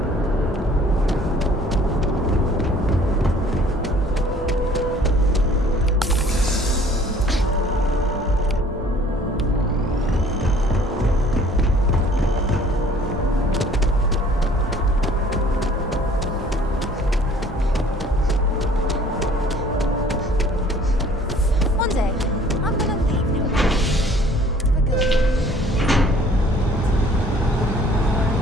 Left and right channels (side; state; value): both; normal; correlation 0.54